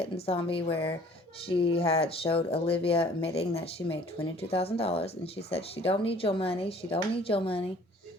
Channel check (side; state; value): both; normal; correlation 0.53